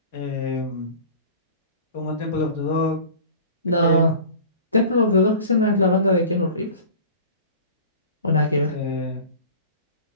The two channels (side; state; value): both; inverted; correlation -0.40